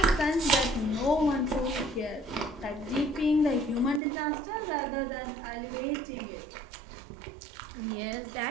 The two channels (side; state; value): left; drops out; at 4.0 s